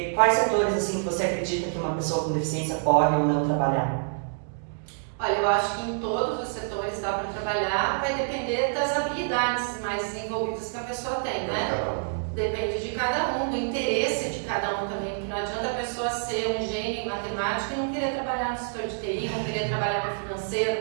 quais setores assim que você acredita que uma pessoa com deficiência pode ou não trabalhar? Olha, eu acho que em todos os setores dá para trabalhar, vai depender das habilidades mais desenvolvidas que a pessoa tem, né? Depende de cada um, do interesse de cada um também, porque não adianta a pessoa ser um gênio em matemática e não querer trabalhar no setor de TI, não querer trabalhar no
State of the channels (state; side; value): silent; left; digital silence